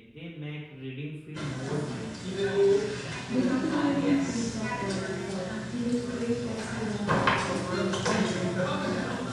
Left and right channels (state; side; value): identical; both; correlation 1.00